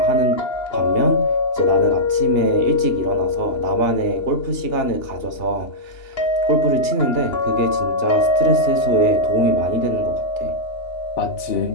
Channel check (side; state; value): right; late; 2.8 ms